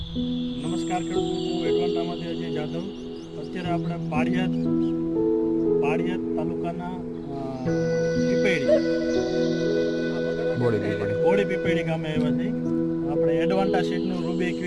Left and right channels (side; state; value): both; identical; correlation 1.00